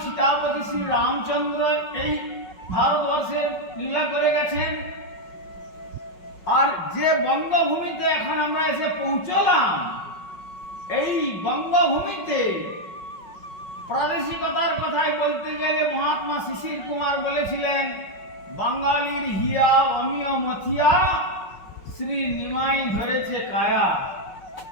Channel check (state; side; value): late; right; 5.5 ms